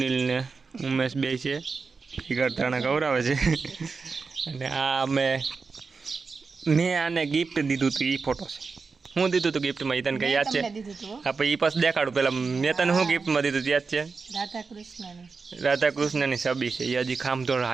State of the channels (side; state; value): left; quieter; 4.7 dB